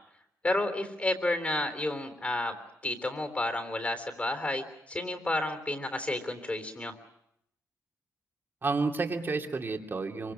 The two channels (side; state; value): both; normal; correlation 0.79